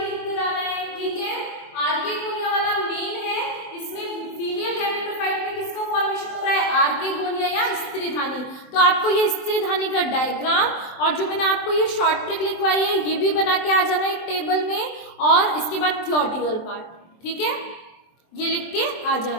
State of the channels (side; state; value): right; late; 23 ms